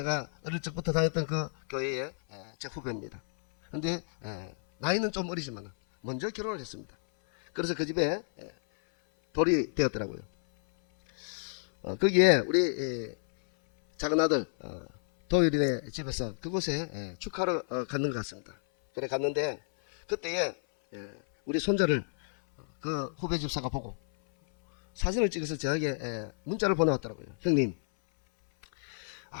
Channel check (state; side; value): silent; right; 57 dB below the other